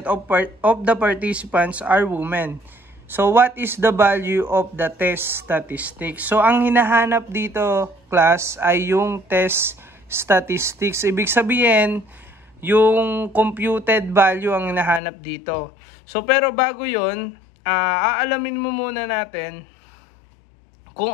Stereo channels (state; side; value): drops out; right; at 15.0 s